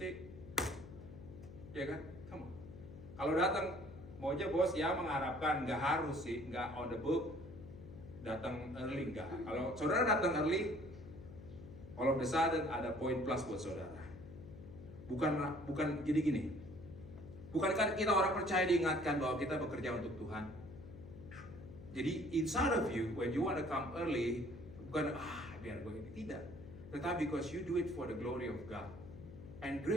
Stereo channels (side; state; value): left; noise; hum, 14 dB below the sound